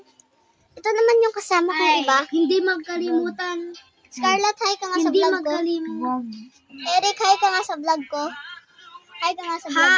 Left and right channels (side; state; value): both; identical; correlation 1.00